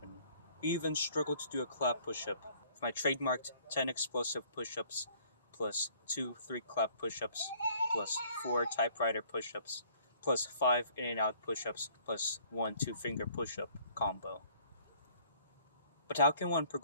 who even struggle to do a clap push-up with my trademarked 10 explosive push-ups plus 2 3 clap push-ups plus 4 typewriter push-ups plus 5 in and out push-ups plus 1 2-finger push-up combo. But how can one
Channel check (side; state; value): both; inverted; correlation -0.58